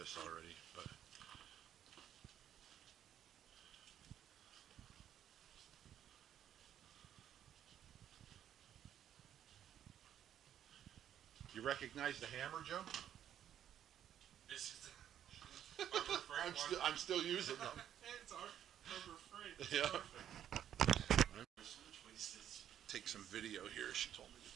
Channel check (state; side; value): quieter; left; 10.3 dB